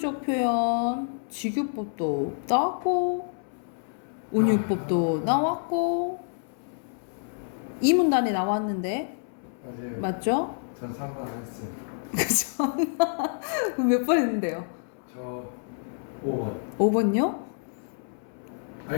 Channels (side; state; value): right; silent; 59 dB below the other